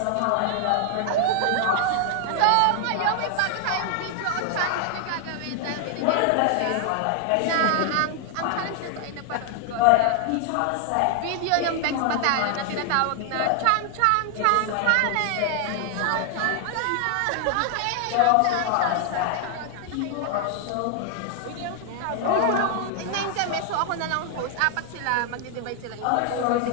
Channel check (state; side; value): different; both; correlation 0.00